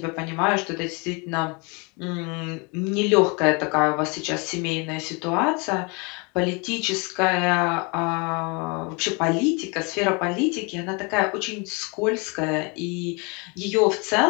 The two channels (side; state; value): right; quieter; 30.8 dB